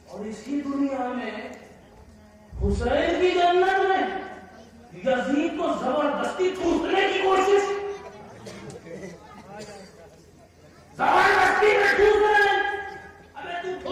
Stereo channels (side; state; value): both; identical; correlation 1.00